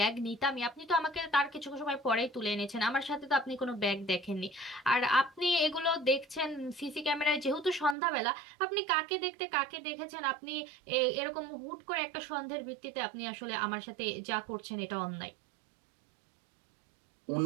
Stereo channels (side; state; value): left; drops out; at 8.0 s